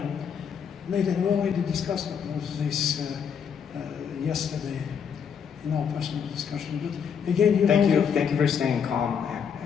made an already discussed of this yesterday in our personal discussion. But again, you Thank know, you. Thank you for staying calm.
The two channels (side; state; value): right; quieter; 7.2 dB